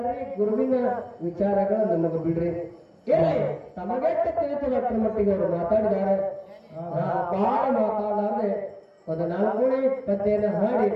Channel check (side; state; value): both; identical; correlation 1.00